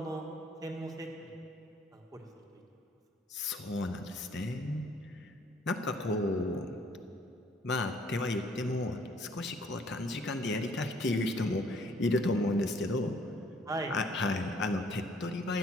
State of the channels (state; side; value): normal; both; correlation 0.61